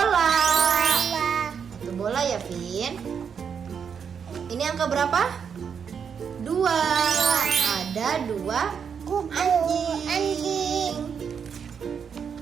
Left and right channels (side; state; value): left; quieter; 7.0 dB